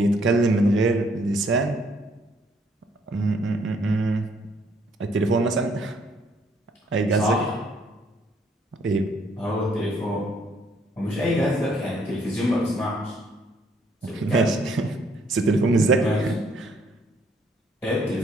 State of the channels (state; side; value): normal; both; correlation 0.66